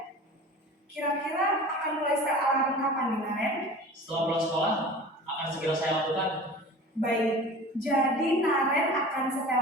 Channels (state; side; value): normal; both; correlation 0.39